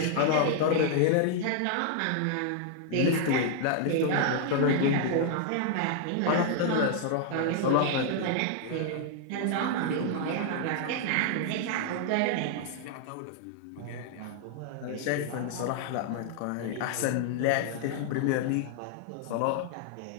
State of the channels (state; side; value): different; both; correlation -0.01